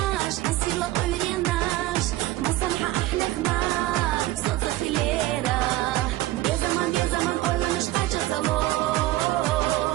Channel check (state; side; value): quieter; left; 16.6 dB